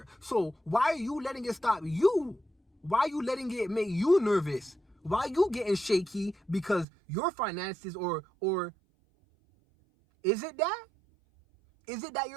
So why are you letting it stop you? Why are you letting it make you nervous? Why are you getting shaky because your finances or is it that? Is it that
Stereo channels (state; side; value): drops out; left; at 6.9 s